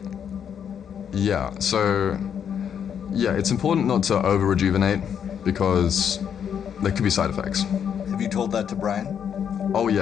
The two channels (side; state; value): right; quieter; 8.2 dB